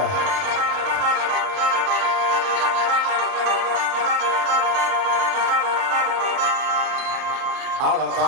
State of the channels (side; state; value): left; late; 30 ms